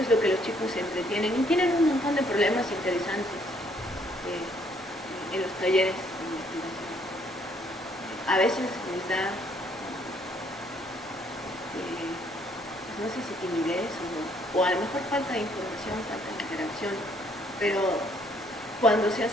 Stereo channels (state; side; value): normal; both; correlation 0.66